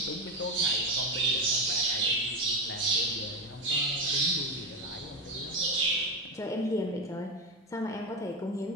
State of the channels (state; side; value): normal; both; correlation 0.15